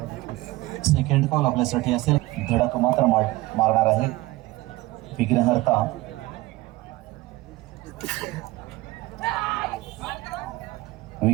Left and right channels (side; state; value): left; quieter; 19.5 dB